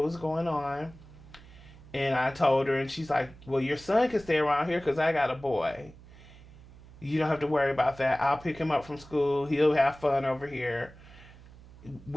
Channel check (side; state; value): right; noise; hum, 20 dB below the sound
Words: was going on. And I told her, and she's like, well, your son can stay around here because I got a boy. You don't have to worry about that. I'll pick him up from school. He'll have fun over here.